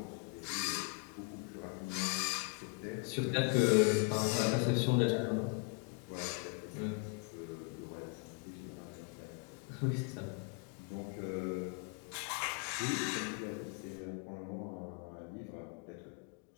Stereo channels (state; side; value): quieter; right; 34.7 dB